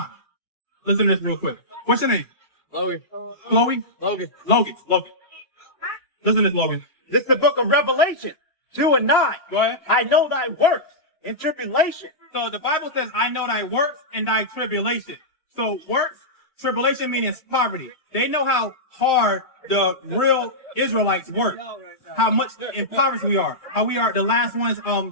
Listen to this real quick. What's your name? Logan. Chloe? Logan. Logan. Listen to this, Logan. This is the book of Revelation 2 and 9. Go ahead. I know thy works in tribulation. So the Bible says, I know thy works and thy tribulation. So works, tribulation means poverty. They know how hard the real Israelites work. How much impoverished we are. How we are the last ones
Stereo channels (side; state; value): right; late; 2.3 ms